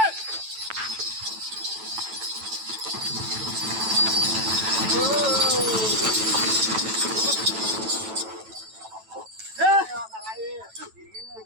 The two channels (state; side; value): late; left; 9.1 ms